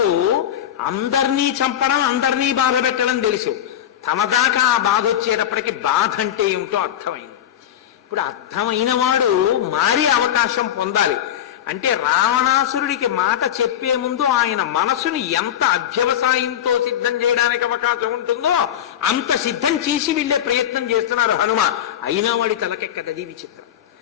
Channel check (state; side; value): quieter; right; 10.7 dB